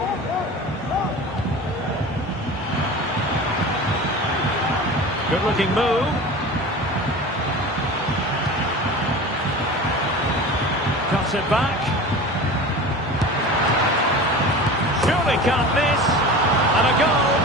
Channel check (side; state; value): both; normal; correlation 0.34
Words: Good-looking move. Cuts it back. Surely can't miss. And a goal.